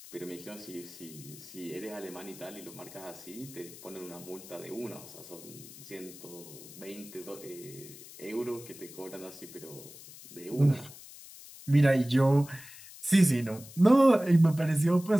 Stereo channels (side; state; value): left; noise; hiss, 17 dB below the sound